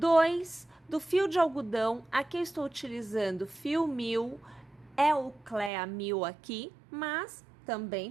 do fio de algodão. Aqui eu estou utilizando fio 1000, é o Clea 1000 aqui, mas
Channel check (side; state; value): left; drops out; at 5.7 s